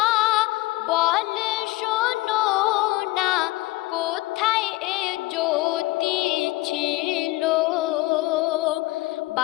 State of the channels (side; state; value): right; quieter; 20.1 dB